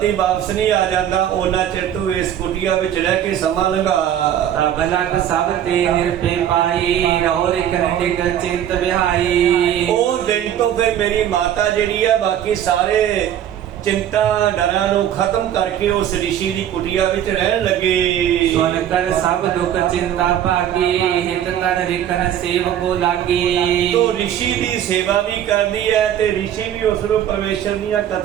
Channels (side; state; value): left; quieter; 10.5 dB